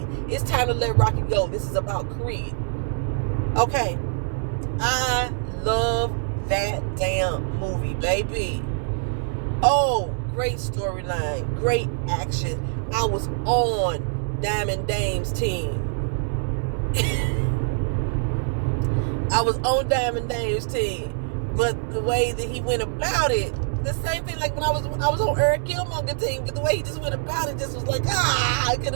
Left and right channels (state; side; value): silent; left; digital silence